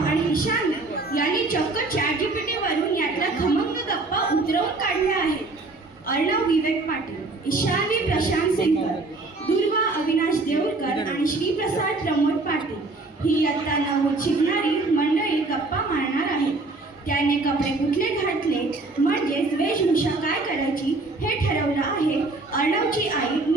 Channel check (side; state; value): left; quieter; 3.3 dB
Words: आणि ईशान यांनी चक्क ChatGPT वरून यातला खमंग गप्पा उतरवून काढल्या आहेत. अर्णव विवेक पाटील, ईशानी प्रशांत सिंगर, दुर्वा अविनाश देऊळकर आणि श्रीप्रसाद प्रमोद पाटील ही इयत्ता 9वीत शिकणारी मंडळी गप्पा मारणार आहेत. त्याने कपडे कुठले घातले म्हणजेच वेशभूषा काय करायची हे ठरवलं आहे अर्णवची आई